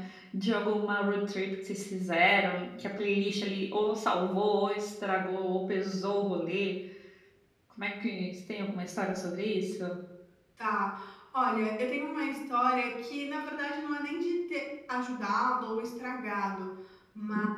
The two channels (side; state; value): both; identical; correlation 1.00